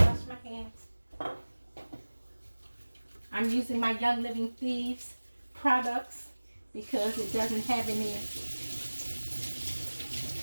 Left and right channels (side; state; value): both; inverted; correlation -1.00